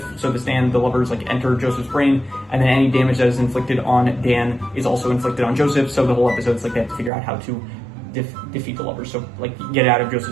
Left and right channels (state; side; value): drops out; left; at 7.1 s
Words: So the Lovers like enter Joseph's brain, and then any damage that is inflicted on Dan is also inflicted on Joseph. So the whole episode is like they have to figure out how to defeat the Lovers. So like get it out of